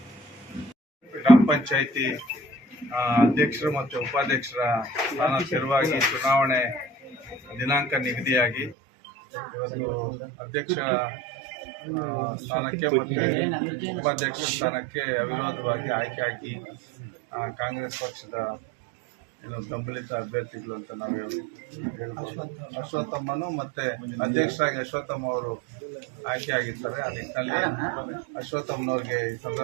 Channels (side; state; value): left; drops out; at 8.8 s